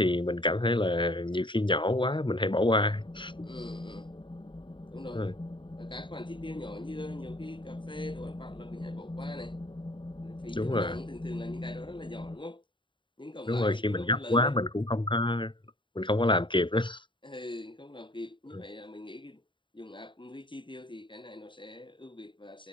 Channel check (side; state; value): right; late; 0.23 ms